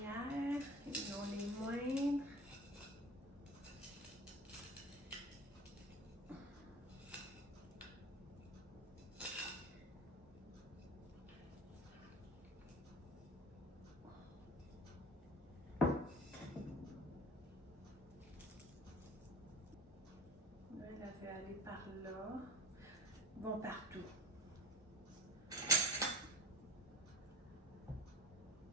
et non les moindres. Là, elle avait aller par là. Ils vont partout.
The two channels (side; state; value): both; normal; correlation 0.38